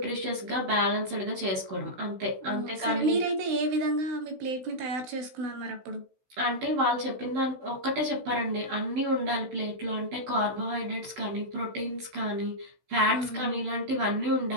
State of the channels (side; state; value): left; late; 16 ms